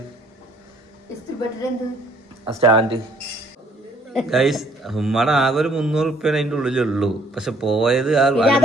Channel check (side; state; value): both; normal; correlation 0.64